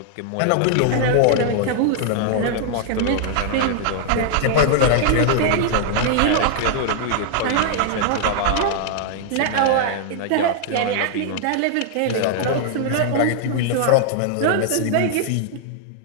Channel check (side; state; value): both; different; correlation -0.01